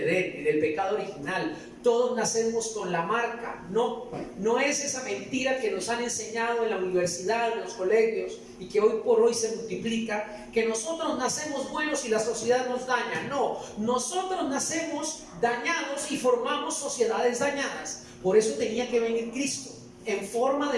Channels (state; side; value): identical; both; correlation 1.00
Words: en el pecado original. Todos nacemos con la marca. No es esa mentira que nos han enseñado en la universidad, en los colegios, y que hoy por hoy se multiplica, que nosotros nacemos buenos y la sociedad nos daña. No, nosotros nacemos dañados y formamos sociedades dañadas. Por eso tenía que venir Cristo en forma